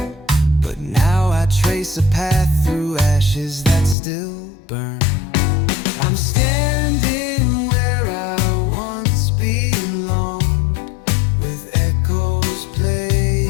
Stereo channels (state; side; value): drops out; right; at 4.0 s